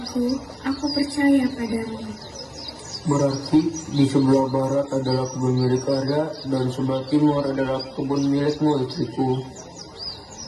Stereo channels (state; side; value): identical; both; correlation 1.00